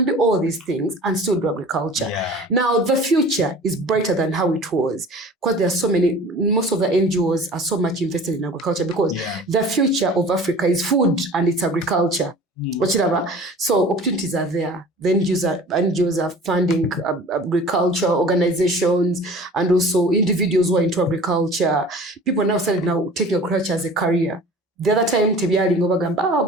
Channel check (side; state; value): both; normal; correlation 0.43